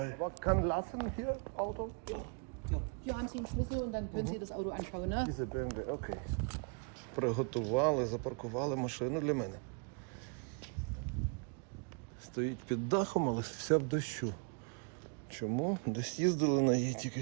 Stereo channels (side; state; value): left; quieter; 38.1 dB